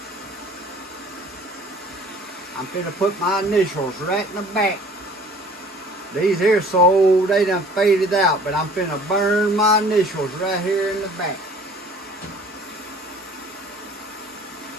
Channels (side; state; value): both; normal; correlation 0.51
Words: I'm going to put my initials right in the back. These here so old they done faded out, but I'm finna burn my initials right here in the back.